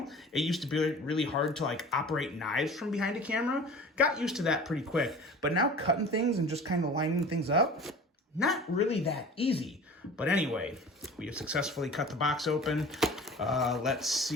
it used to be really hard to operate knives from behind a camera. Got used to that pretty quick, but now cutting things and just kind of lining things up, not really that easy. But anyway, we have successfully cut the box open. Let's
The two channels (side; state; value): both; normal; correlation 0.41